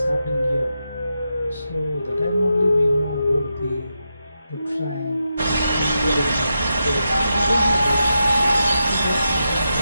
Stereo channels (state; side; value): inverted; both; correlation -0.87